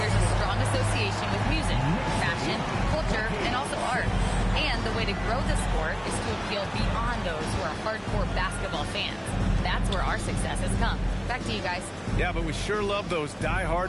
a strong association with music, fashion, culture, and also art. And the way to grow the sport is to appeal beyond those who are hardcore basketball fans. That's where our success has come. Back to you guys. Yeah, but we sure love those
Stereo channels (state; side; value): identical; both; correlation 1.00